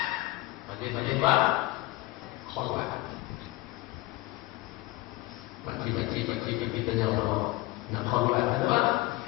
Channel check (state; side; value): quieter; right; 19.3 dB